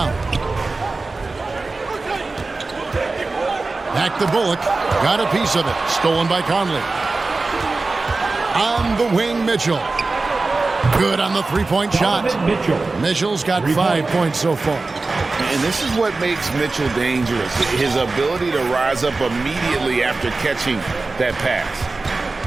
Back to Bullock. Got a piece of it. Stolen by Conley. On the wing, Mitchell. Good on the 3-point shot. Mitchell's got 5 points so far. And this is what makes Mitchell dangerous. His ability to rise up immediately after catching that pass.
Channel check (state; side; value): quieter; left; 3.6 dB